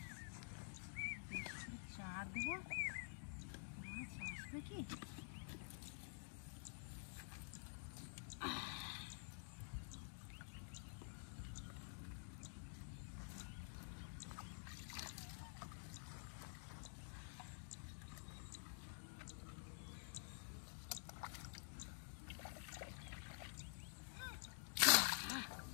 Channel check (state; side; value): silent; right; digital silence